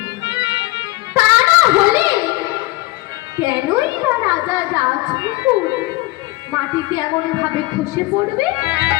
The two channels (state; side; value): quieter; right; 20.2 dB